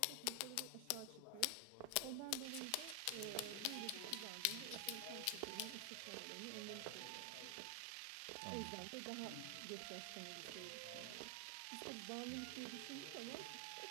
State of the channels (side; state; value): both; different; correlation 0.00